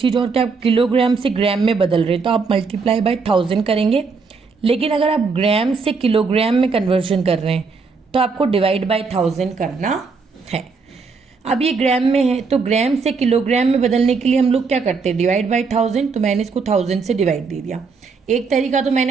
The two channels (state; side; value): quieter; left; 4.8 dB